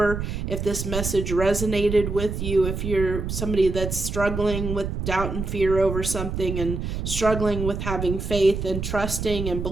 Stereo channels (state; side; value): noise; right; rumble, 4 dB below the sound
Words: If this message resonated with you, if you're somebody that's struggling with doubt and fear over something, and struggling with having faith and trusting and